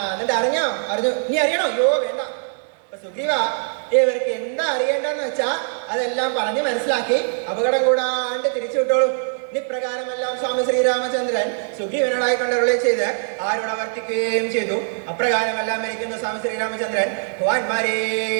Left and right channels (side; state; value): left; silent; digital silence